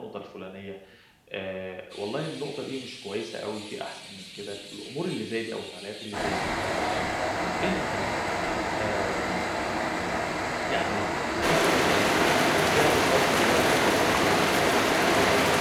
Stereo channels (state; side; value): identical; both; correlation 1.00